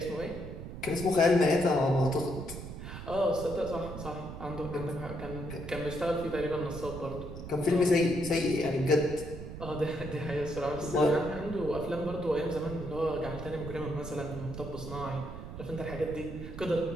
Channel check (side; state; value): right; noise; rumble, 10 dB below the sound